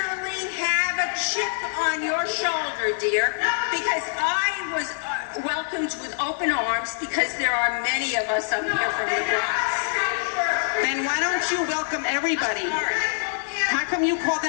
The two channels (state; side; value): silent; right; 55 dB below the other